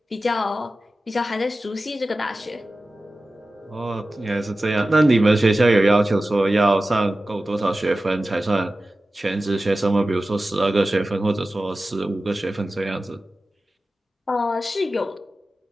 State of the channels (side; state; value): both; normal; correlation 0.95